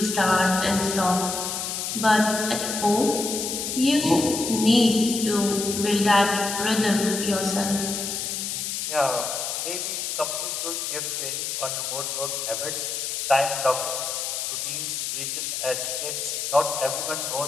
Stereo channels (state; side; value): noise; left; hiss, 3 dB below the sound